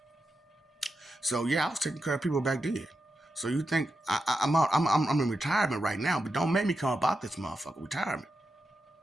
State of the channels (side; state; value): both; normal; correlation 0.88